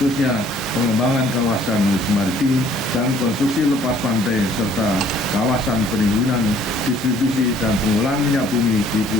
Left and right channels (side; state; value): both; normal; correlation 0.59